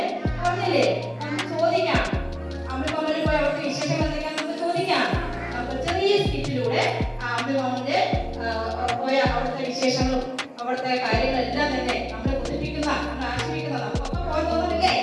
പറഞ്ഞില്ലേ? നമുക്ക് ചോദിക്കാം, അമ്പിളിമാമന് പോയി അവിടുത്തെ വിശേഷങ്ങൾ എന്തൊക്കെയാ നമുക്ക് ചോദിക്കാം. നമുക്ക് ചെറിയ സ്കിറ്റിലൂടെ അമ്പിളിമാമന്റെ പോയ അവിടുത്തെ വിശേഷങ്ങളും അവിടുത്തെ കാര്യങ്ങളെല്ലാം തന്നെ നമ്മളെ കൊതിപ്പിക്കുന്ന, നമ്മളെ ആശ്രയിക്കുന്ന, നമുക്കൊക്കെ പോയി തോന്നുന്നില്ലേ?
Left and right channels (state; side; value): identical; both; correlation 1.00